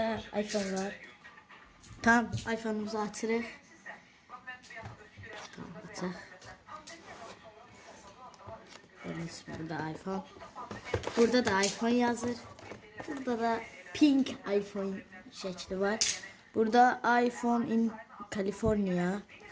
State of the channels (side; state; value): both; identical; correlation 1.00